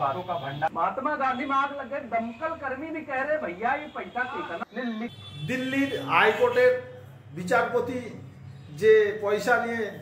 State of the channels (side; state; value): both; identical; correlation 1.00